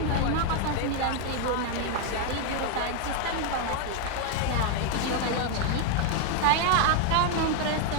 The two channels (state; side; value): different; both; correlation 0.00